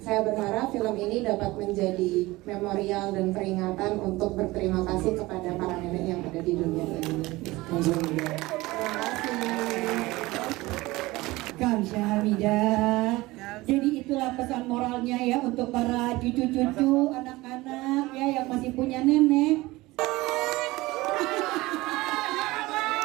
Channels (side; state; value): left; quieter; 20.1 dB